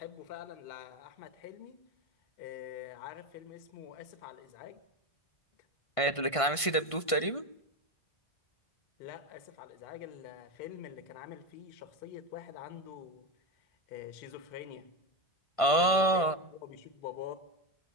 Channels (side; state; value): right; late; 1.5 ms